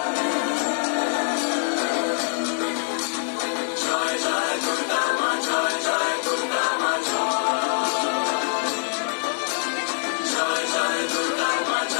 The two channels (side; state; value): right; silent; 62 dB below the other